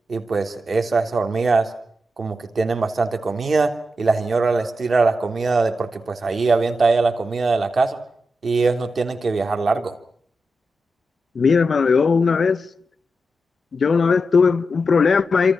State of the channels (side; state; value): both; normal; correlation 0.88